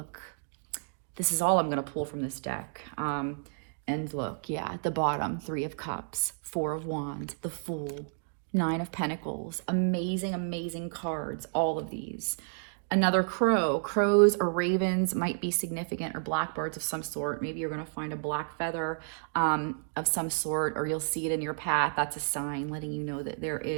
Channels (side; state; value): left; silent; digital silence